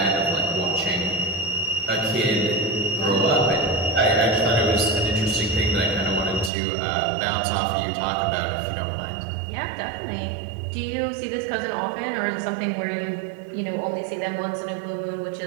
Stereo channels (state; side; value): drops out; left; at 6.5 s